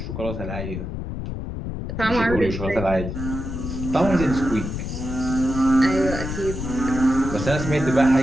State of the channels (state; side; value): noise; left; rumble, 6 dB below the sound